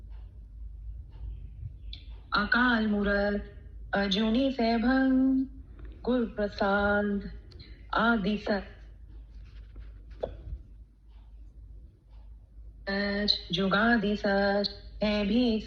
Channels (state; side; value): identical; both; correlation 1.00